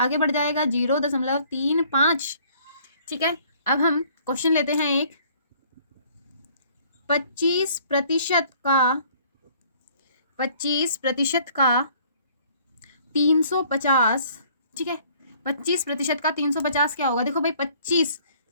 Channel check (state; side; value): inverted; both; correlation -0.58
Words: बढ़ जाएगा 0.35। ठीक है, अब हम क्वेश्चन लेते हैं एक। 25% का 350, ठीक है, 25% का 350 क्या होगा, देखो भाई 25